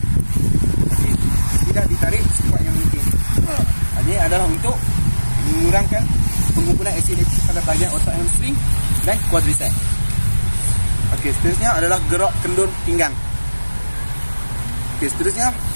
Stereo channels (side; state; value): both; inverted; correlation -1.00